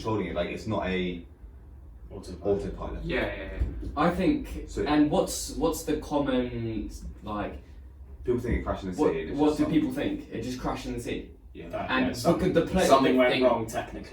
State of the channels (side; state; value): both; identical; correlation 1.00